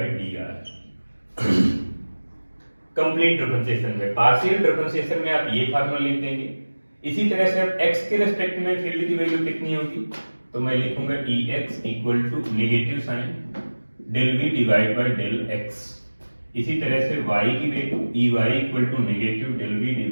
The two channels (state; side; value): inverted; both; correlation -1.00